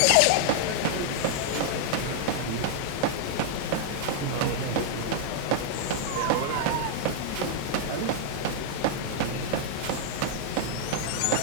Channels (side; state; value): both; different; correlation -0.01